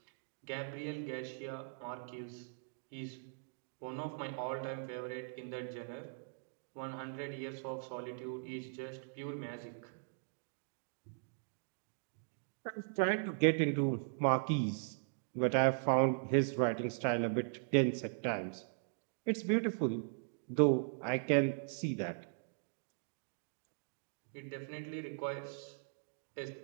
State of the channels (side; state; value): left; silent; digital silence